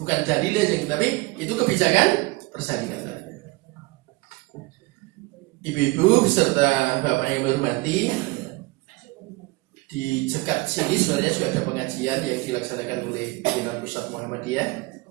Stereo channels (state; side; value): quieter; left; 23.3 dB